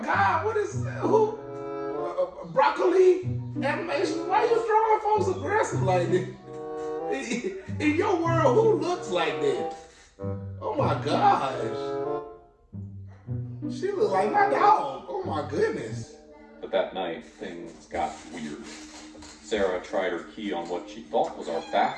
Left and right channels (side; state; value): both; identical; correlation 1.00